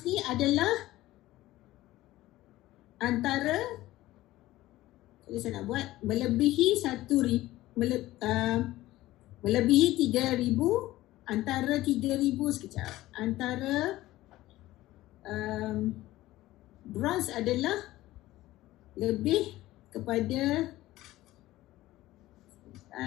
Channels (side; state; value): right; quieter; 16.5 dB